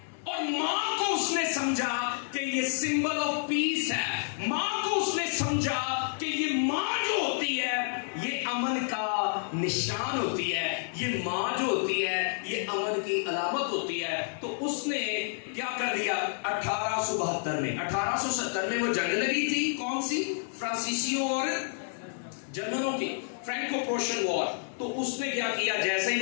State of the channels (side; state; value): right; silent; digital silence